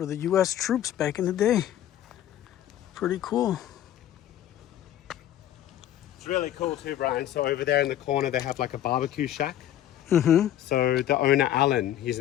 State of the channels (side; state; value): right; quieter; 11.8 dB